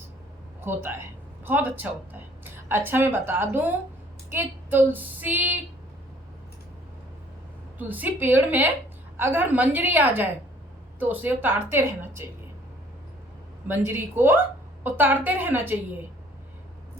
होता है, बहुत अच्छा होता है। अच्छा, मैं बता दूं कि तुलसी पेड़ में अगर मंजरी आ जाए तो उसे उतारते रहना चाहिए। मंजरी को उतारते रहना चाहिए।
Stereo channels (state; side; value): normal; both; correlation 0.58